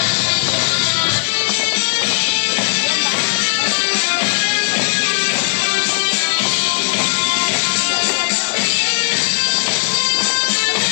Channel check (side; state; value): right; silent; digital silence